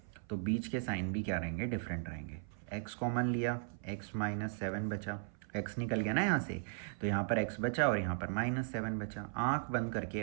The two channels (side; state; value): left; silent; 53 dB below the other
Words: तो बीच के साइन भी क्या रहेंगे, डिफरेंट रहेंगे। x कॉमन लिया, x माइनस 7 बचा, x निकल गया ना यहाँ से, तो यहाँ पर x बचा और यहाँ पर -7 बचा। आँख बंद